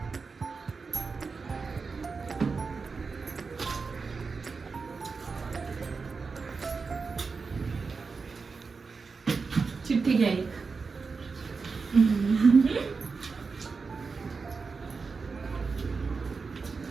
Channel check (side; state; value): left; quieter; 4.7 dB